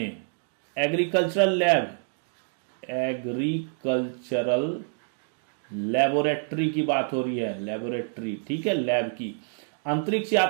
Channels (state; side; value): silent; left; 60 dB below the other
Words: लेबोरेटरी की बात हो रही है, लेबोरेटरी, ठीक है, लैब की, अंतरिक्ष